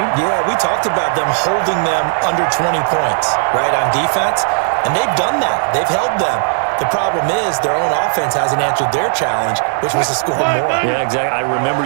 Yeah, we talked about them holding them under 20 points, right, on defense, and they've done that. They've held them. The problem is their own offense hasn't answered their challenge, which was to score more. Yeah, exactly. I remember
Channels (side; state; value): left; silent; 69 dB below the other